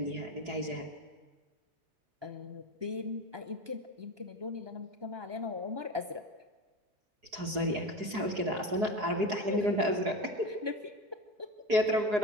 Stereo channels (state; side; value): late; left; 4.8 ms